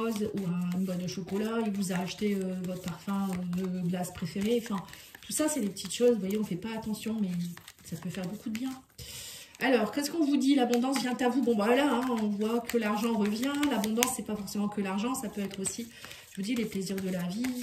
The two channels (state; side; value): identical; both; correlation 1.00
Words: ou une boîte de chocolat, il vous a acheté votre parfum de glace préféré, enfin tout ça c'est des petites choses, vous voyez, on fait pas attention mais ça peut faire beaucoup de bien. Alors, qu'est-ce qu'on vous dit? L'abondance vient à vous. Bon, voilà, hein, on voit que l'argent revient. L'abondance, c'est pas forcément que l'argent. Ça peut être aussi, je vous dis, les plaisirs de la vie.